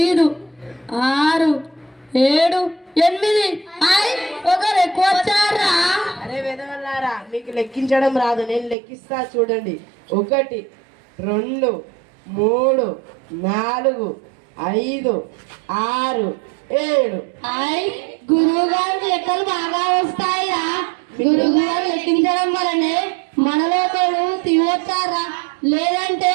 6 7 8. ఒకరు ఎక్కువ వచ్చారా? అరే విధవల్లారా, మీకు లెక్కించడం రాదు, నేను లెక్కిస్తా చూడండి. 1 2 3 4 5 6 7. గురువు గారు లెక్కలు బాగా వస్తాయిరా. గురువు గారు లెక్కించడం వల్లనే మనలో ఒకడు తివచ్చారా, లేదంటే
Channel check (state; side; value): drops out; left; at 8.8 s